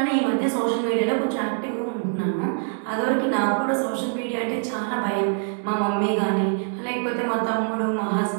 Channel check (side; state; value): left; silent; 57 dB below the other